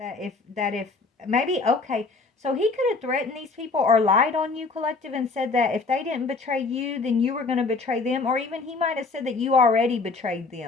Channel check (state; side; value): quieter; right; 4.0 dB